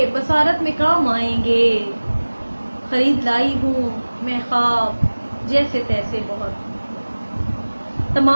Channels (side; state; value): both; inverted; correlation -1.00